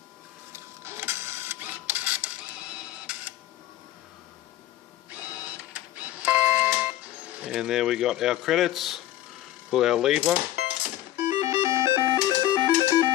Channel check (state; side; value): quieter; right; 14.2 dB